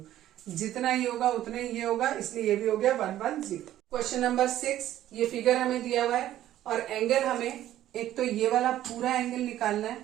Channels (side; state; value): left; quieter; 12.9 dB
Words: जितना ये होगा उतना ही ये होगा, इसलिए ये भी हो गया 110। क्वेश्चन नंबर 6, ये फिगर हमें दिया हुआ है और एंगल हमें एक तो ये वाला पूरा एंगल निकालना है